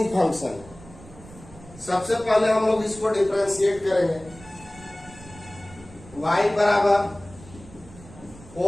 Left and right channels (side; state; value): right; noise; rumble, 20 dB below the sound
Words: फंक्शन। सबसे पहले हम लोग इसको डिफरेंशिएट करेंगे। y बराबर